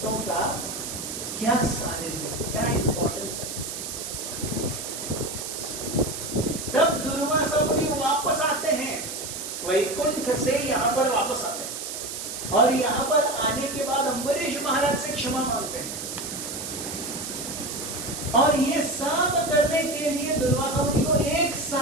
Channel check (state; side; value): noise; right; hiss, 6 dB below the sound